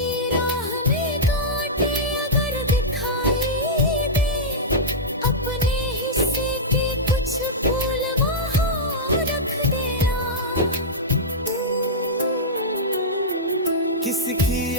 राह में कांटे अगर दिखाई दे, अपने हिस्से के कुछ फूल वहाँ रख देना। किसी की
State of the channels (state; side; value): normal; both; correlation -0.10